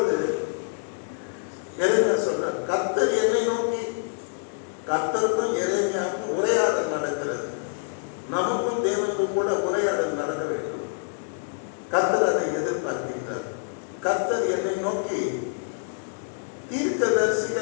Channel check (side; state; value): right; silent; digital silence